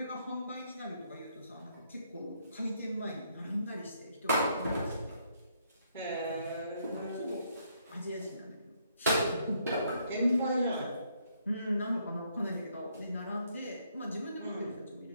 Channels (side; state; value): both; inverted; correlation -0.72